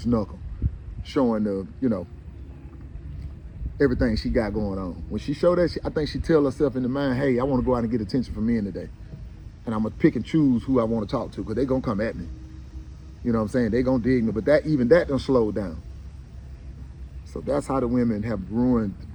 knuckle, showing the, everything she got going on. When she show that, I think she tell herself in the mind, hey, I want to go out and get attention from men today. And I'm going to pick and choose who I want to talk to because they going to come at me. You know what I'm saying? They going to dig me. But even that done slowed down. So that's how the women have ruined,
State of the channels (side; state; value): both; identical; correlation 1.00